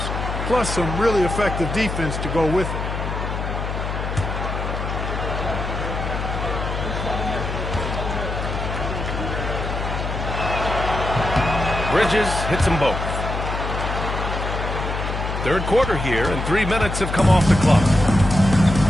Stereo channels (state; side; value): noise; left; hum, 4 dB below the sound